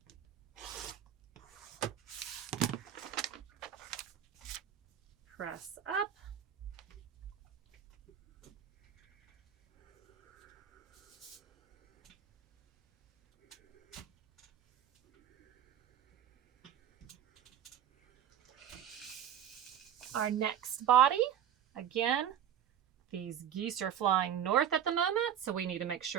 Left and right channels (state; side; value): quieter; left; 9.8 dB